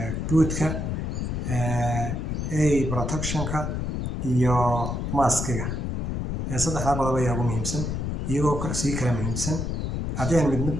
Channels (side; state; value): left; noise; rumble, 2 dB below the sound